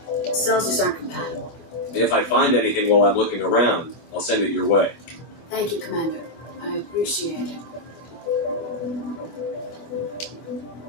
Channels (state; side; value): late; right; 24 ms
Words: The cells just aren't compatible. If I find anything while I'm looking around, I'll send it your way. Thank you, Commander. I appreciate it.